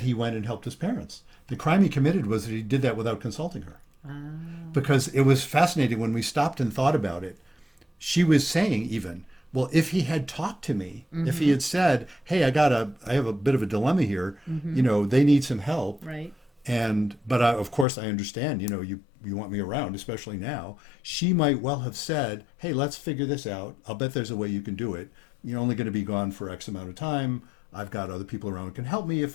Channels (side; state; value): right; drops out; at 17.9 s